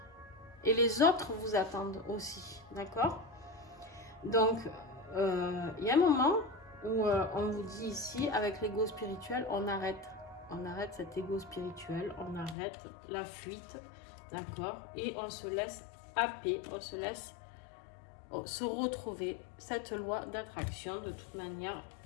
Et les autres vous attendent aussi, d'accord? Donc, il y a un moment où on vous dit ici, avec l'ego spirituel, on arrête cet ego spirituel, on arrête la fuite, d'accord? Et on se laisse happer, on se laisse se retrouver cette loi d'attraction de toute manière,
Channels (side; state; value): right; drops out; at 12.6 s